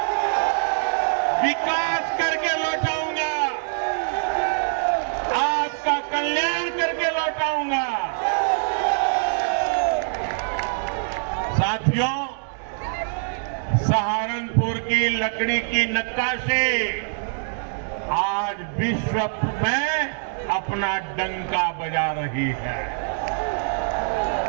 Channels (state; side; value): silent; left; digital silence